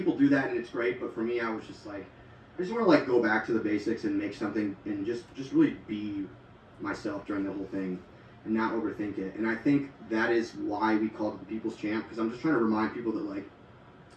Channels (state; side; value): identical; both; correlation 1.00